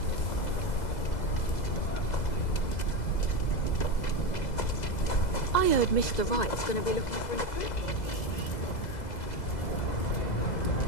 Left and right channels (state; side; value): late; right; 2.0 ms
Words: I heard Mr. Wright's gonna be looking for an apprentice.